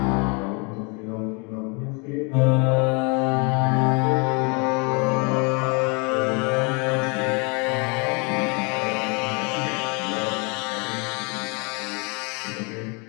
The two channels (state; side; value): quieter; right; 33.1 dB